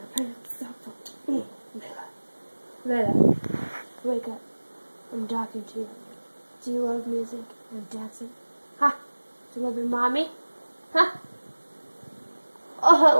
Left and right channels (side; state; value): both; inverted; correlation -1.00